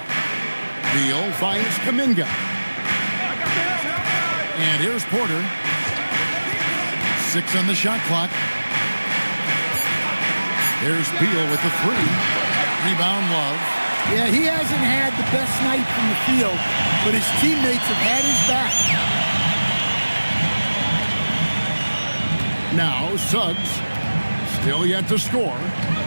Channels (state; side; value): inverted; both; correlation -1.00